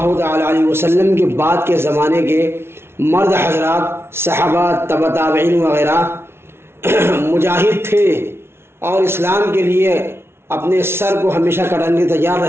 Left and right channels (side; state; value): left; late; 0.12 ms